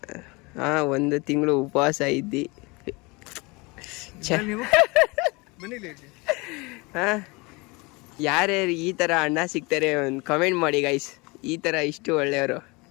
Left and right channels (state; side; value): quieter; right; 26.3 dB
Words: 1 ತಿಂಗಳು ಉಪವಾಸ ಇದ್ದಿ. ನೀವು ಬನ್ನಿಲ್ಲ ಯಾರ್ಯಾರು ಈ ಥರ ಅಣ್ಣ ಸಿಗ್ತಾರೆ ಒಂದು ಕಮೆಂಟ್ ಮಾಡಿ ಗೈಸ್. ಈ ಥರ ಇಷ್ಟು ಒಳ್ಳೆಯವರು.